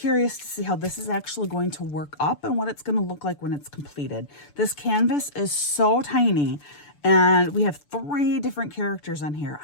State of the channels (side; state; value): right; late; 6.9 ms